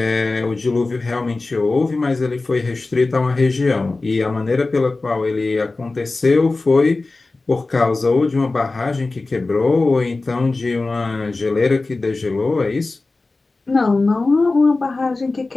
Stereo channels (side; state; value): right; quieter; 3.4 dB